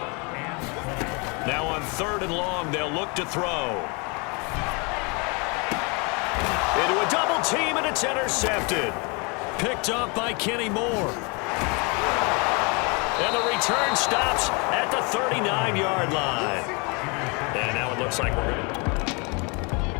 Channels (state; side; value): quieter; right; 31.3 dB